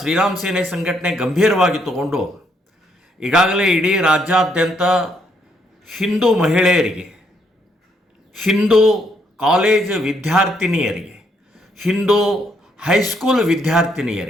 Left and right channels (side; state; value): both; normal; correlation 0.73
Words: ಸೇನೆ ಸಂಘಟನೆ ಗಂಭೀರವಾಗಿ ತಗೊಂಡು ಈಗಾಗಲೇ ಇಡೀ ರಾಜ್ಯಾದ್ಯಂತ ಹಿಂದೂ ಮಹಿಳೆಯರಿಗೆ, ಹಿಂದೂ ಕಾಲೇಜ್ ವಿದ್ಯಾರ್ಥಿನಿಯರಿಗೆ, ಹಿಂದೂ ಹೈಸ್ಕೂಲ್